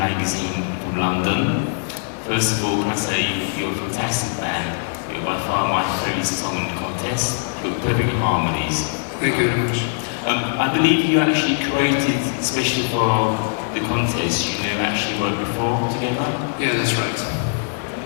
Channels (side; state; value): right; silent; digital silence